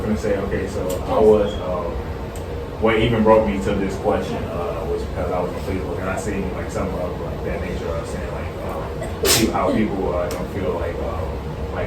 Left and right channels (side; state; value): both; identical; correlation 1.00